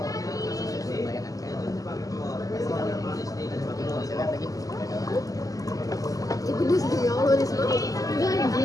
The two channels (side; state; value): right; late; 0.17 ms